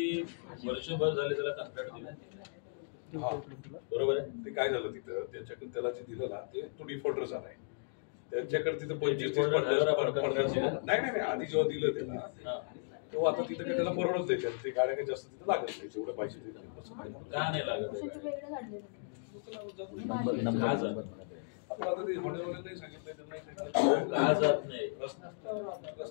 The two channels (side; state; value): right; silent; digital silence